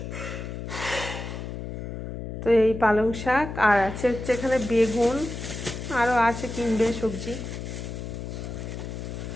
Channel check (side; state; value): left; noise; hum, 7 dB below the sound